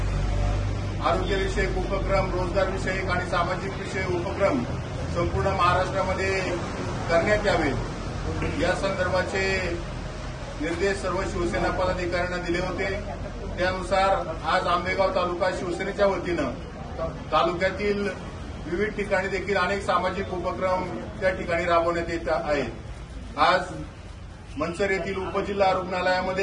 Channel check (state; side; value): identical; both; correlation 1.00